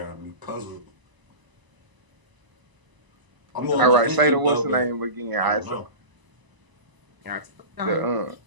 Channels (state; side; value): late; left; 1.0 ms